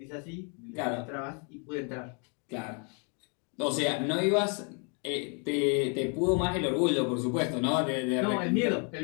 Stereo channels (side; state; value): right; quieter; 37.9 dB